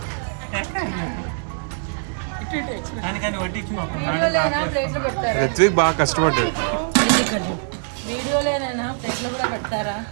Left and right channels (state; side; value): silent; left; digital silence